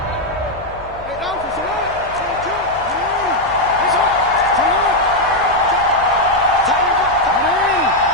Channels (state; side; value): noise; left; hum, 19 dB below the sound